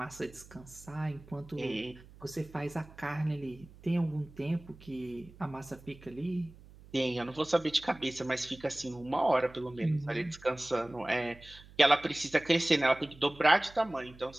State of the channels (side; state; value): right; noise; hum, 21 dB below the sound